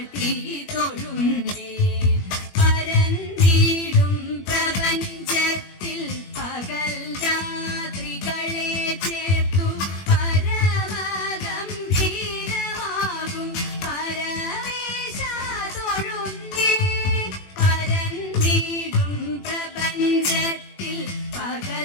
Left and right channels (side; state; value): right; late; 21 ms